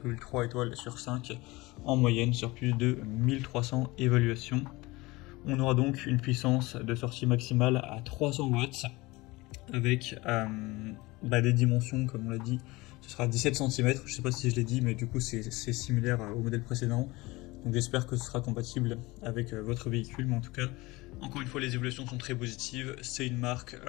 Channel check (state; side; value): quieter; right; 21.8 dB